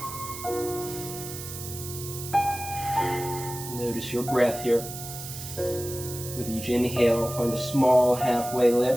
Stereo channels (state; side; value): noise; right; hiss, 10 dB below the sound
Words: Notice your breath here. With each inhale, find a small halfway